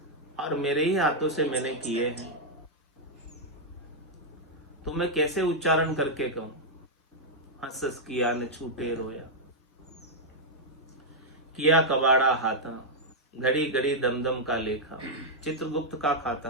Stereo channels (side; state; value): both; normal; correlation -0.04